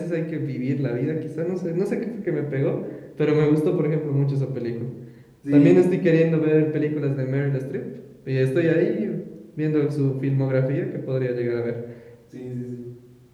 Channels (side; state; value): both; identical; correlation 1.00